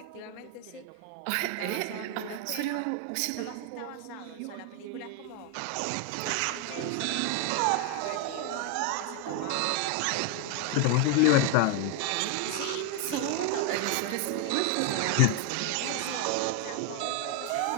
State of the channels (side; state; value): both; different; correlation 0.01